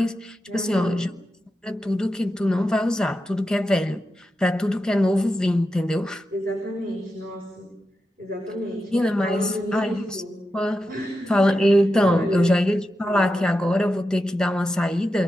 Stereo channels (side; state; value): both; normal; correlation 0.89